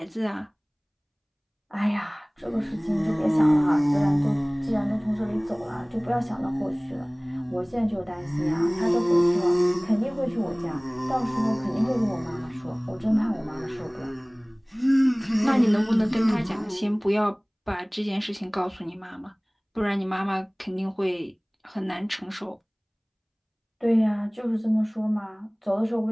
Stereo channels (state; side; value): identical; both; correlation 1.00